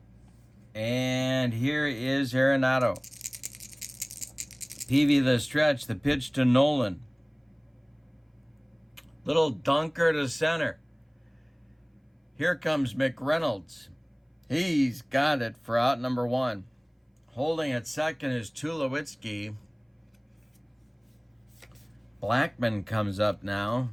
And here is Arenado. Peavy the stretch, the pitch to Nolan. Little dunker to center. Here comes McReynolds. He's got it for out number 1. Holding at second is Tulowitzki. Blackman comes up now.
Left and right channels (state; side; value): identical; both; correlation 1.00